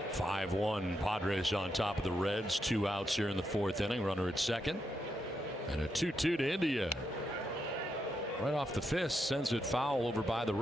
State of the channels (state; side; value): normal; both; correlation 0.82